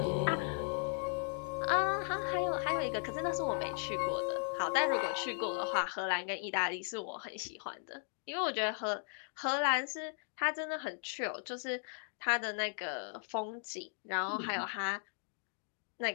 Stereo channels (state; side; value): silent; right; 53 dB below the other